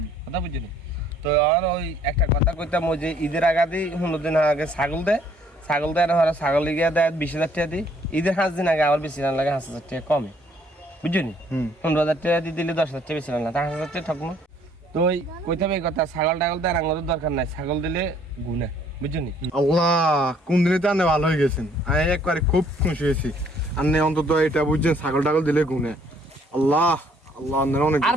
কথা বুঝলি তো আর ওই একটা কথা কইতাম ওই যে ঈদের আগে 15 দিন আগে ছাগল দেয় না ছাগল গিয়ে দেয় 20,000 টাকা দিই ঈদের 5 দিন আগে আবার বেশি না লাগে 5,000 টাকা কমে বুঝলি 15,000 টাকা দিয়ে দিলে 10,000 টাকা বেশি না 5,000 টাকা ঠকমো তো ওই কইতাম এই কথা ছাগল টাগল দেয় আমাদের দরকার নাই ছাগল দিলে গুনে বুঝলি আল্লাহ কোন দিনে তো আনে ভালো হয়ে গেছেন আমি একবারে খুব খুশি হয়েছি আন্নে অন্তত এটা বুঝছেন ছাগল টাগল দিলে গুনে আল্লাহ আল্লাহ আন্নের অনেক আর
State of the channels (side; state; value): both; normal; correlation 0.62